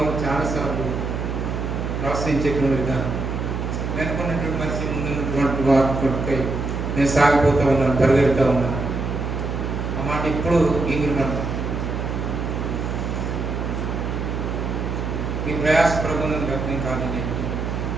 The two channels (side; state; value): right; noise; hum, 3 dB below the sound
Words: చాలాసార్లు ప్రోత్సహించేటువంటి విధానం, వెనుకున్నటువంటి మనిషి ముందున్నటువంటి వారి కొడుకై నేను సాగిపోతా ఉన్నాను, పరిగెడుతూ ఉన్నాను. ఆ మాట ఇప్పుడు ఇంగిరిమంట. ఈ ప్రయాస ప్రభుత్వం వ్యక్తం కాదని